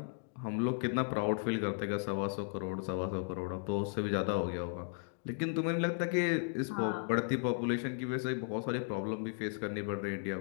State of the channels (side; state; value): right; silent; digital silence